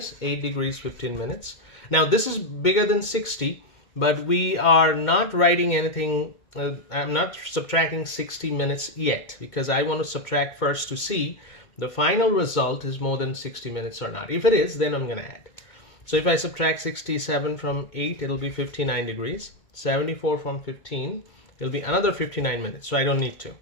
8 degrees, 15 minutes. Now this is bigger than 60, but we are not writing anything. I'm not subtracting 60 minutes yet, because I want to subtract first to see the final result is more than 60 minutes or not. If it is, then I'm going to add. So if I subtract 67 from 8, it'll be 59 degrees. 74 from 15, it'll be another 59 minutes. So I don't need to.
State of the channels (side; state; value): right; late; 2.2 ms